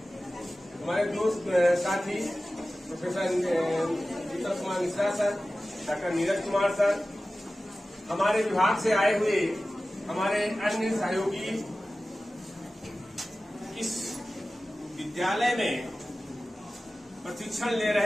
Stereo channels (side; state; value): both; normal; correlation 0.96